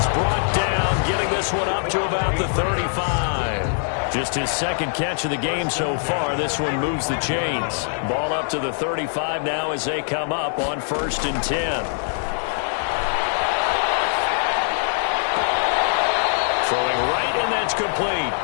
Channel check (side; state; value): right; silent; digital silence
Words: brought down, getting this one up to about the 35. Just his 2nd catch of the game so far. This one moves the chains. Ball up to the 35 now as they come up on 1st and 10. Throwing right, and that's complete.